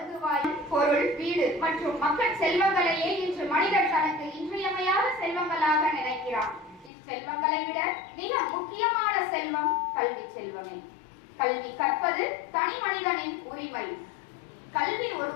பொருள், வீடு மற்றும் மக்கள் செல்வங்களையே இன்று மனிதர் தனக்கு இன்றியமையாத செல்வங்களாக நினைக்கிறான். இச்செல்வங்களை விட மிக முக்கியமான செல்வம் கல்வி செல்வமே. கல்வி கற்பது தனி மனிதனின் உரிமை. கல்வி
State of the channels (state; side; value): drops out; right; at 6.9 s